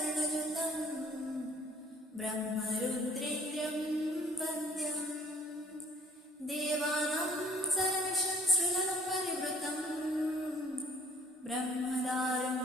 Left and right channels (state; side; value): normal; both; correlation 0.55